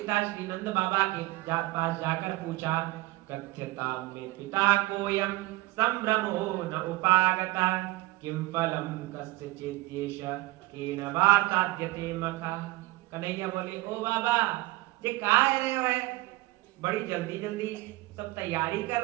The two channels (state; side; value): quieter; left; 19.9 dB